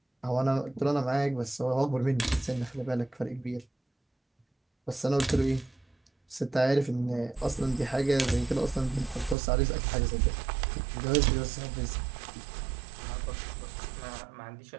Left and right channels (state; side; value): drops out; left; at 9.3 s